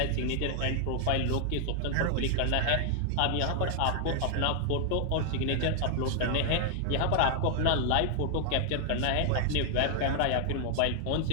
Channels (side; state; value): both; different; correlation 0.00